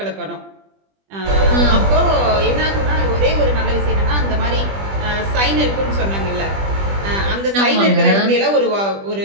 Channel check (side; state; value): left; late; 20 ms